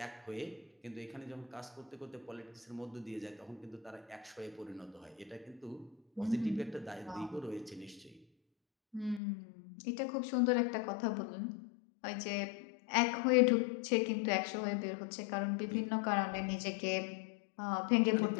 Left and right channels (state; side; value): drops out; right; at 9.2 s